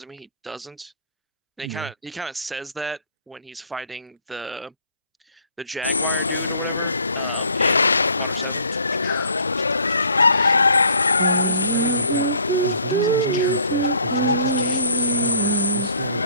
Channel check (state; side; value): inverted; both; correlation -0.57